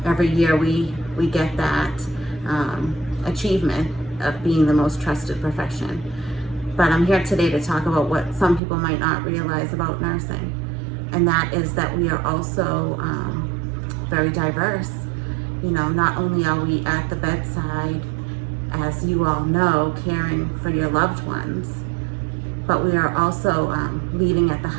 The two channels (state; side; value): drops out; left; at 8.6 s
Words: every year we get that achievement of being the most trusted profession. But I'm here today to talk about what some people might not realize about nursing, and that is that we are also very diverse. You know, not only are we at the bedside, as you all know, caring for your loved ones, but we are also leading at the